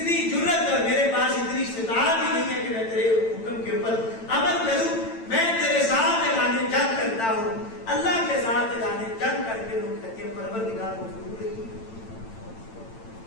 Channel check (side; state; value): right; late; 8.9 ms